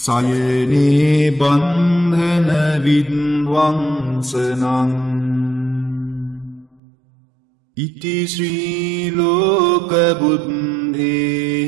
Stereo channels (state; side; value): drops out; left; at 6.8 s